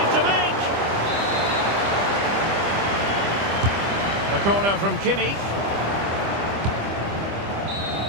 to make! The corner from Kimmich.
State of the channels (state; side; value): late; left; 25 ms